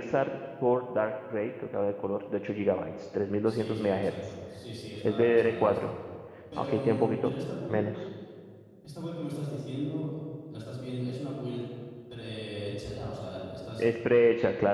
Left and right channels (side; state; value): both; identical; correlation 1.00